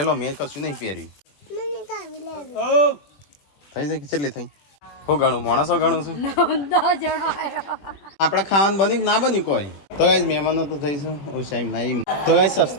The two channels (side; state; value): right; late; 21 ms